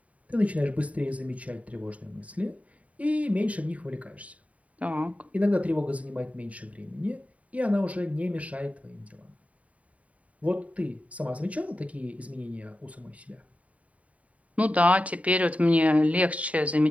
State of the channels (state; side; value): late; left; 0.068 ms